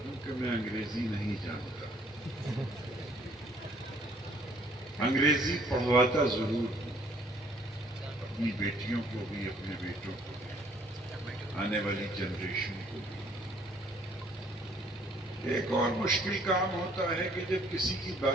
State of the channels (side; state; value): both; normal; correlation 0.61